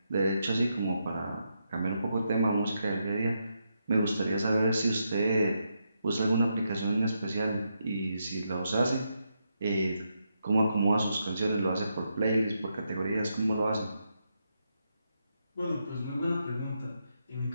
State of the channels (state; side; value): inverted; both; correlation -0.82